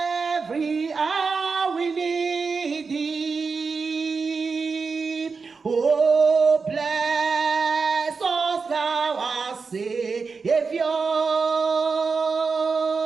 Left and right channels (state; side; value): quieter; left; 4.8 dB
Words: hour we need thee. Oh, bless us now, our Savior,